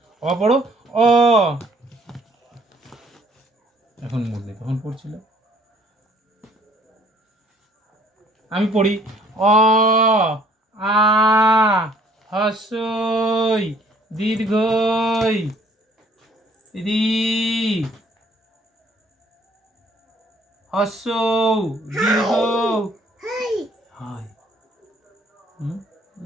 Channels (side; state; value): both; normal; correlation 0.59